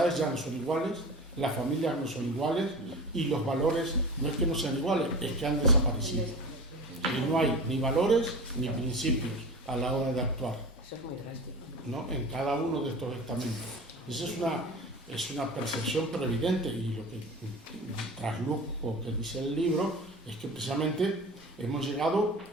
ya no son iguales, las familias no son iguales y los valores no es que no sean iguales, es que han desaparecido. y no hay ni valores ni principios a la hora de actuar, Eso es muy drástico. ¿no? En cada uno de estos estamentos. Esa es una percepción pero evidente, y lo que trasluzco que dice el libro es que precisamente hemos llegado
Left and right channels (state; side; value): normal; both; correlation 0.33